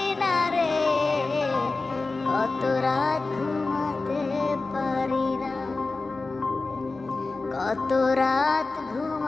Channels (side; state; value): right; quieter; 3.6 dB